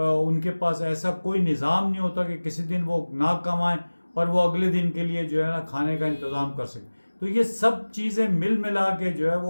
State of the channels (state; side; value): inverted; both; correlation -1.00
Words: کے پاس ایسا کوئی نظام نہیں ہوتا کہ کسی دن وہ نہ کمائیں اور وہ اگلے دن کے لیے جو ہے نا کھانے کا انتظام کر سکیں، تو یہ سب چیزیں مل ملا کے جو ہے